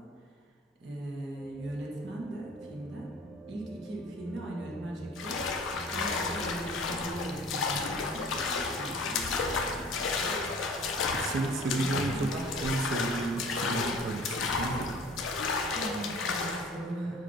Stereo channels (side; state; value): both; normal; correlation 0.46